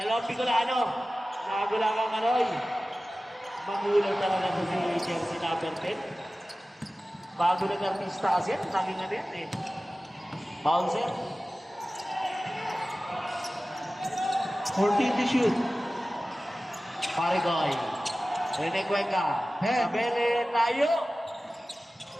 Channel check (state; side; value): normal; both; correlation 0.96